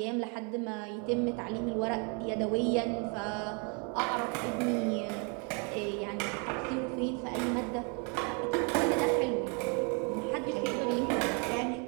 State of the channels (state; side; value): quieter; left; 35.4 dB